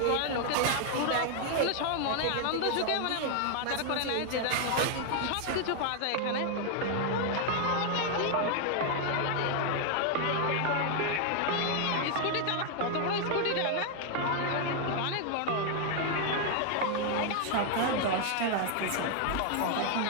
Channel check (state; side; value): different; both; correlation 0.00